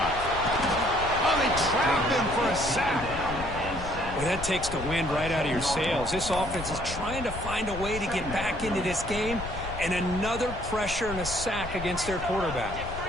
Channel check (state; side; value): noise; left; rumble, 9 dB below the sound